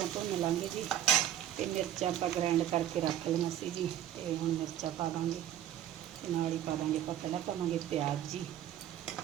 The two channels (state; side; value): quieter; left; 11.5 dB